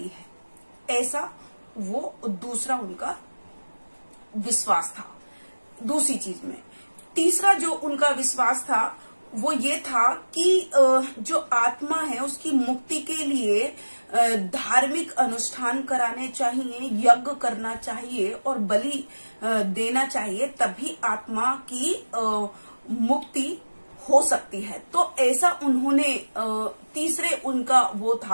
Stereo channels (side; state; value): both; inverted; correlation -1.00